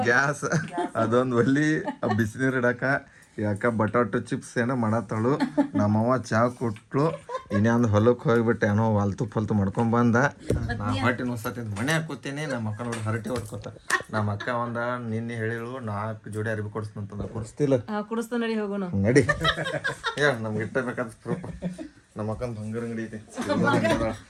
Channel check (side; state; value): both; identical; correlation 1.00